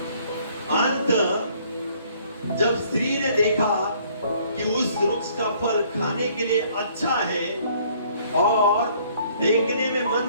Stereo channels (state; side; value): inverted; both; correlation -0.61